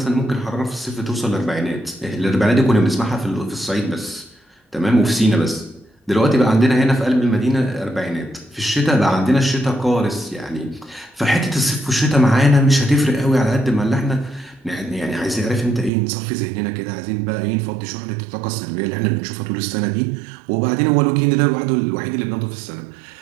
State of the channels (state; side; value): drops out; left; at 15.9 s